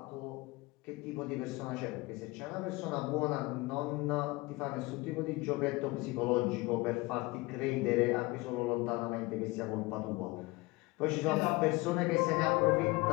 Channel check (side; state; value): right; quieter; 22.6 dB